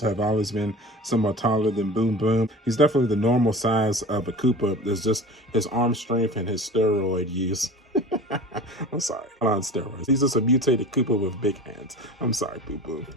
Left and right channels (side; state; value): both; normal; correlation 0.37